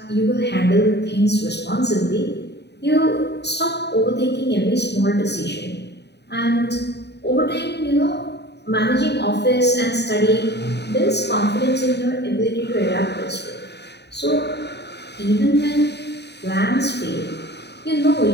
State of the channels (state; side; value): late; right; 0.49 ms